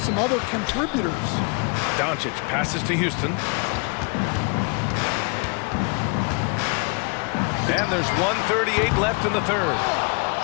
other contributors. Doncic passes to Houston. And there's 1:38 left in the third.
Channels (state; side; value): quieter; right; 33.7 dB